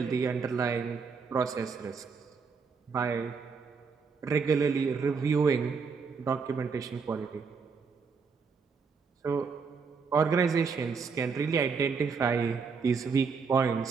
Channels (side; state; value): left; quieter; 5.3 dB